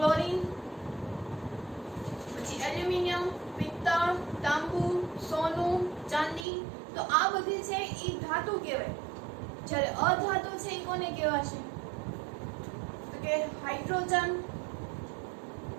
પછી એલ્યુમિનિયમ, પિત્તળ, તાંબુ, સોનું, ચાંદી. તો આ બધી છે એ ધાતુ કહેવાય. જ્યારે અધાતુ છે એ કોને કહેવાશે, તો કે હાઇડ્રોજન.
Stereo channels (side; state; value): left; drops out; at 6.5 s